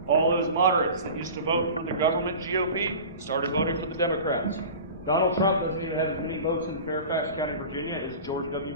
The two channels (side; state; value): both; inverted; correlation -0.36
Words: All those moderates that used to vote for the government GOP started voting for the Democrats. Donald Trump doesn't even have as many votes in Fairfax County, Virginia as George W.